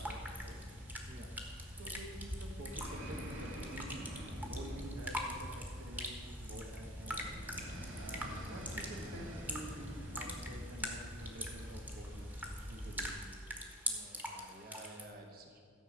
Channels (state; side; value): normal; both; correlation 0.44